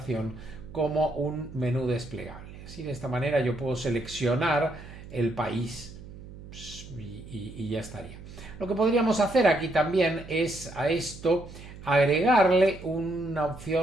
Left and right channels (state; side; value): noise; right; hum, 15 dB below the sound